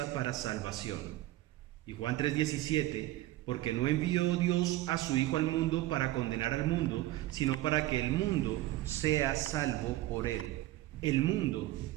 para salvación. Y Juan 3:17: porque no envió Dios a su Hijo al mundo para condenar al mundo, sino para que el mundo sea salvo por él. El mundo,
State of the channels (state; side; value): quieter; left; 16.1 dB